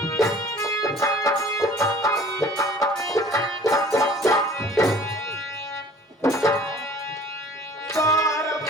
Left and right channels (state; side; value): normal; both; correlation 0.50